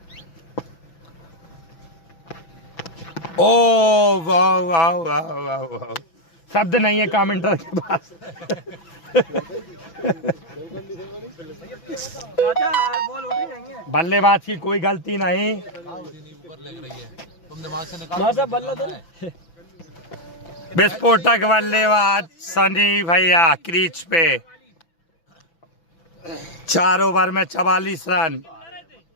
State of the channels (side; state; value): right; late; 6.0 ms